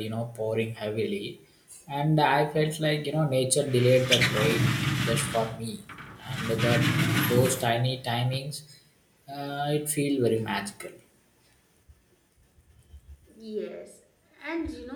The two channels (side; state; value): both; identical; correlation 1.00